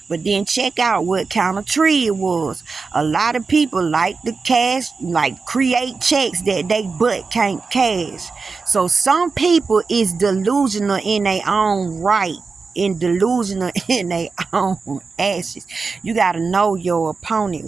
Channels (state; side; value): quieter; left; 4.5 dB